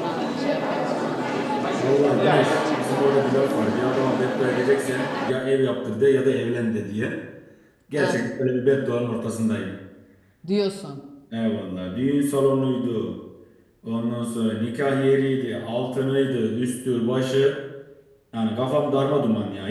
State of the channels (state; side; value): identical; both; correlation 1.00